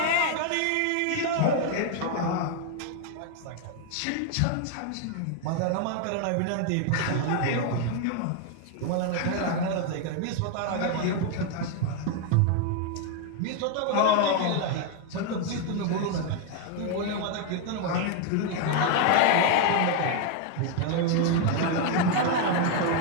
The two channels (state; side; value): different; both; correlation 0.01